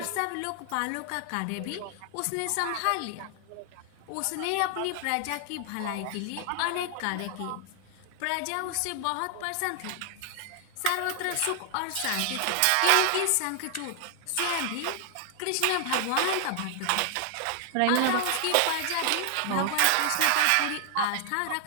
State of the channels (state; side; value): different; both; correlation 0.00